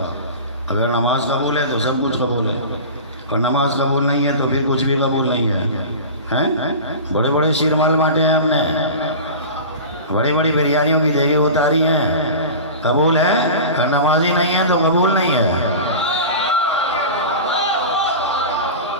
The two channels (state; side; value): inverted; both; correlation -0.32